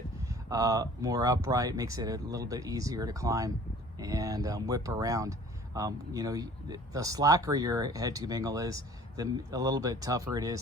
more upright, makes it a little bit easier to climb and whip around. You know, the slacker your head tube angle is, a little bit tougher it is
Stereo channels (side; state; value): both; normal; correlation 0.49